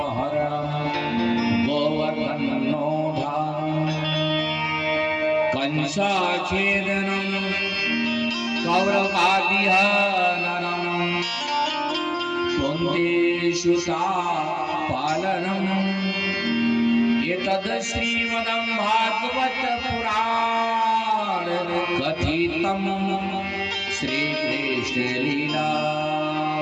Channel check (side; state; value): both; identical; correlation 1.00